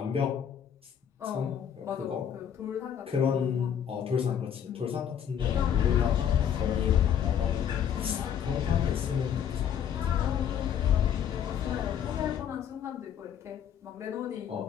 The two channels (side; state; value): right; quieter; 8.9 dB